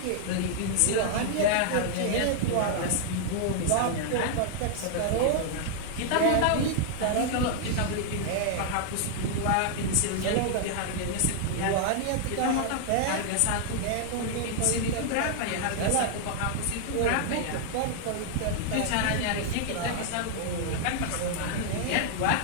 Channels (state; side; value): different; both; correlation 0.00